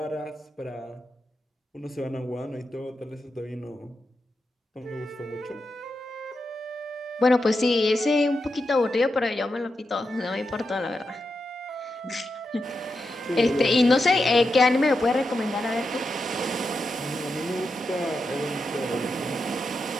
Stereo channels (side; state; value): both; normal; correlation 0.87